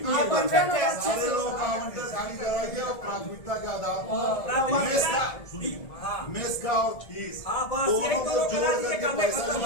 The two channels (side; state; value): right; late; 1.7 ms